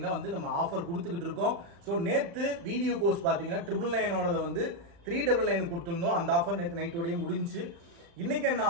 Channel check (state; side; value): late; left; 35 ms